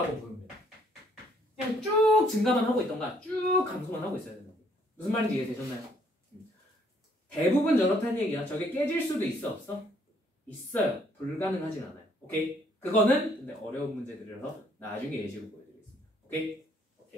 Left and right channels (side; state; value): both; normal; correlation 0.65